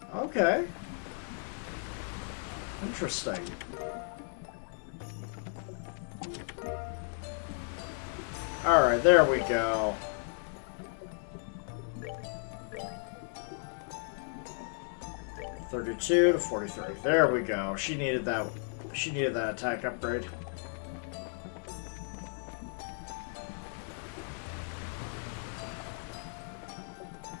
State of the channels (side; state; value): right; silent; 55 dB below the other